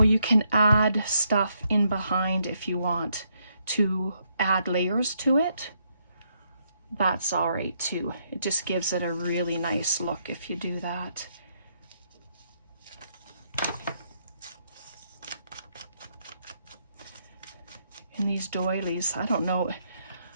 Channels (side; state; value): both; inverted; correlation -0.76